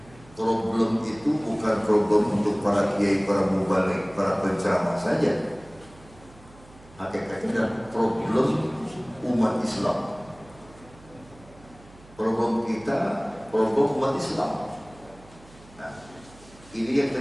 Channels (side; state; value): right; noise; hum, 23 dB below the sound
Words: problem itu bukan problem untuk para kiai, para mubalik, para penceramah saja. Hakikatnya adalah problem umat Islam. Problem kita, problem umat Islam. Nah, ini yang